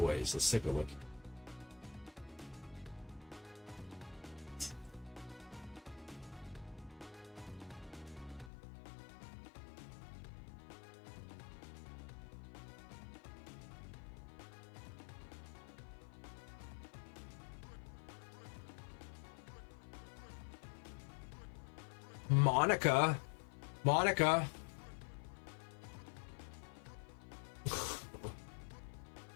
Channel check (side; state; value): right; drops out; at 8.5 s